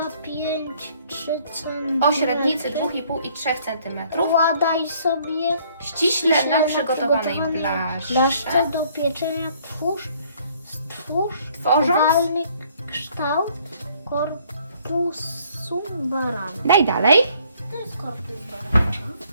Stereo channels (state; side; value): inverted; both; correlation -0.62